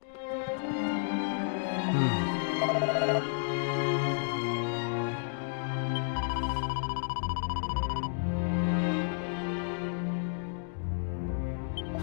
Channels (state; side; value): silent; right; digital silence